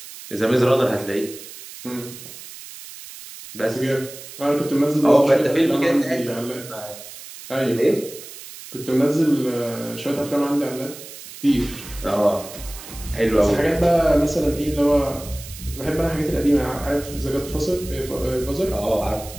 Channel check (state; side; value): noise; right; hiss, 15 dB below the sound